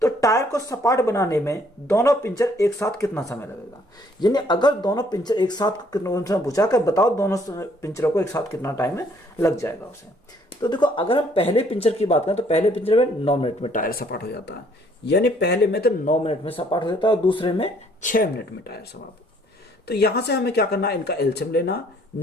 तो टायर को सपाट बनाने में दोनों पिंचर एक साथ कितना समय लगेगा। यानी अगर दोनों पिंचर एक साथ कितना पूछा कर बताओ, दोनों पिंचरों को एक साथ कितना टाइम लग जाएगा उसे। तो देखो अगर हम पहले पिंचर की बात करें तो पहले पिंचर में 9 मिनट में टायर सपाट हो जाता है, यानी पहले में तो 9 मिनट में सपाट हो जाता है और दूसरे में 6 मिनट में टायर सपाट। तो यहां से हमें क्या करना है, इनका एलसीएम लेना।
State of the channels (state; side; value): normal; both; correlation 0.63